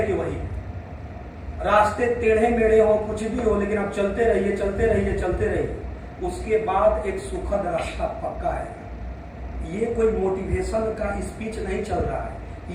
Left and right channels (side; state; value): both; identical; correlation 1.00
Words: कि वही है, रास्ते टेढ़े मेढ़े हो, कुछ भी हो, लेकिन आप चलते रहिए चलते रहिए चलते रहिए, उसके बाद एक सुखद रास्ता पक्का है। ये कोई मोटिवेशन का स्पीच नहीं चल रहा है,